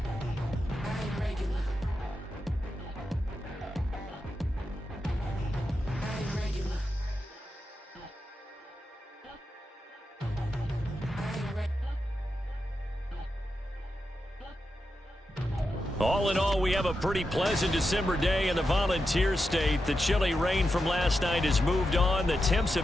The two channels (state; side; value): normal; both; correlation 0.88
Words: All in all, we have a pretty pleasant December day in the Volunteer State. The chilly rain from last night has moved on. The temps